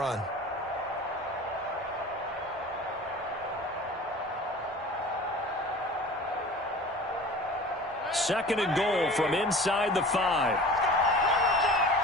Second and goal from inside the 5.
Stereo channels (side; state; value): both; normal; correlation 0.40